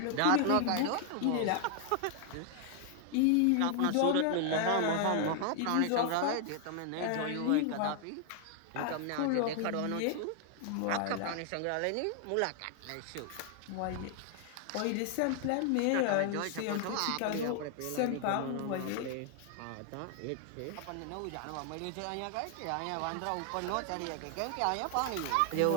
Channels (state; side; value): different; both; correlation 0.00